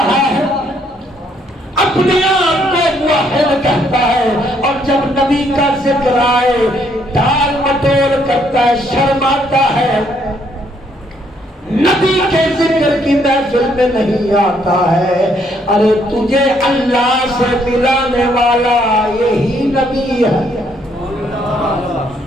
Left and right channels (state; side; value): normal; both; correlation 0.69